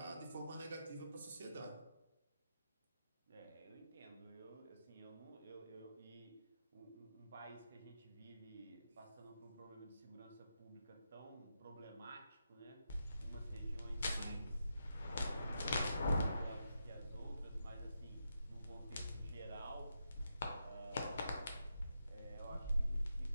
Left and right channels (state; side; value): inverted; both; correlation -0.84